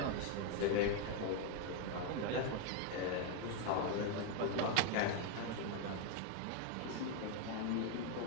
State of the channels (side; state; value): both; different; correlation 0.01